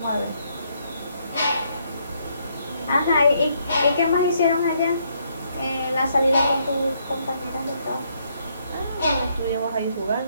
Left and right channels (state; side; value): inverted; both; correlation -0.72